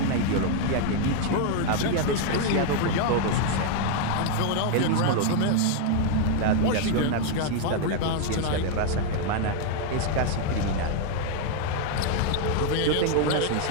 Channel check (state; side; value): different; both; correlation 0.00